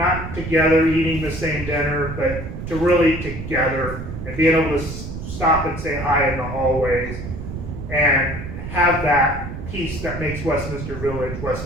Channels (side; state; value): right; noise; rumble, 8 dB below the sound